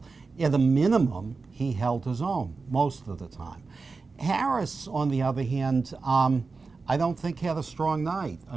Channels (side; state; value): left; quieter; 4.2 dB